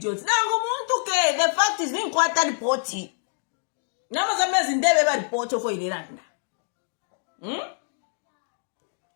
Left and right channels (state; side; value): silent; right; digital silence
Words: Nango muntu ke, the fact is being quite reporty. Nama Zambia zindebe ba report for Iranda.